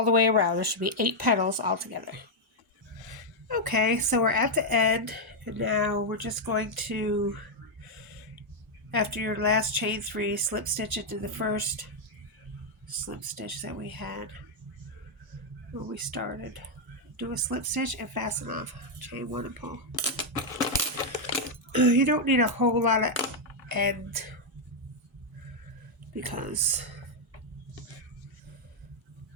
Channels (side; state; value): both; normal; correlation -0.01